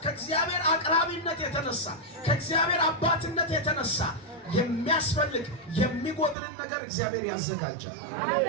ከእግዚአብሔር አቅራቢነት የተነሳ ከእግዚአብሔር አባትነት የተነሳ የሚያስፈልግ የሚጎድልን ነገር እግዚአብሔር ያዘጋጃል።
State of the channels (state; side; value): drops out; left; at 6.4 s